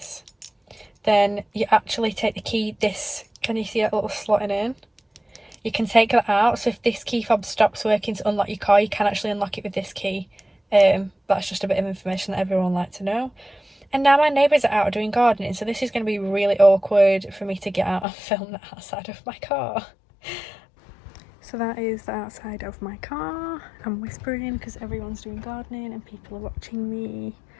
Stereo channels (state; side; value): drops out; right; at 18.1 s